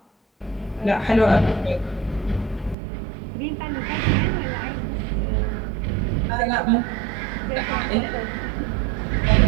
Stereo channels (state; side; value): drops out; left; at 2.8 s